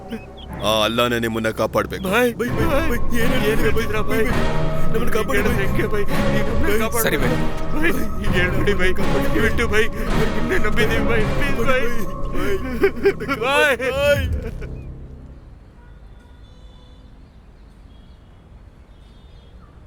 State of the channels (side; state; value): both; identical; correlation 1.00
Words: ಆ ಅಲ್ಲಾನೇ ನಿಮ್ಮನ್ನ ಕಾಪಾಡ್ಬೇಕು. ಸರಿ ಬೈ, ಹೇಳ್ಬಿಡಿ ಬೈ, ಬಿಟ್ಟು ಬೈ, ನಿನ್ನೆ ನಂಬಿದೀವಿ ಬೈ, ಪ್ಲೀಸ್ ಬೈ.